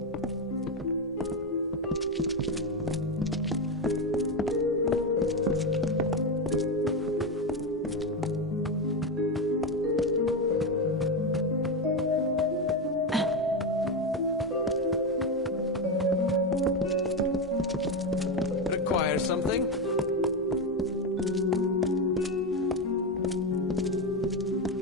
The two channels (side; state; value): both; normal; correlation 0.12